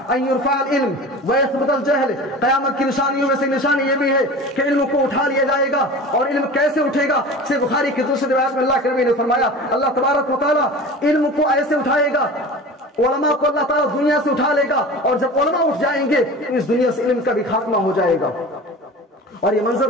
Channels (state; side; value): normal; both; correlation 0.35